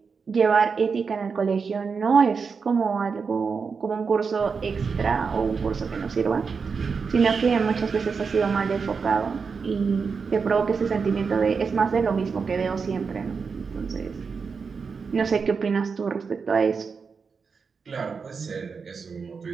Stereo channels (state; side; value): quieter; left; 5.4 dB